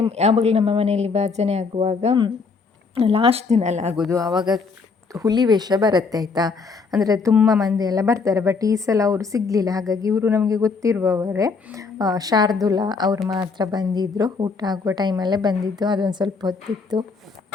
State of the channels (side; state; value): right; quieter; 4.7 dB